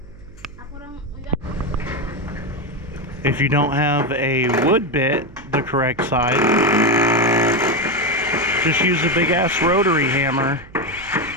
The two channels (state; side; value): noise; right; hum, 21 dB below the sound